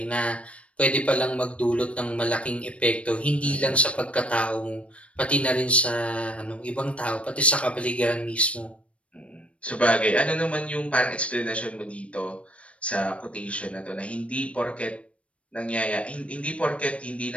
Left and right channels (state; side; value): late; right; 0.062 ms